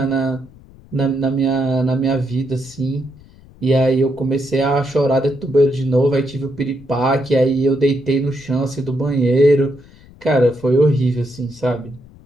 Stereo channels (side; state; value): left; noise; rumble, 24 dB below the sound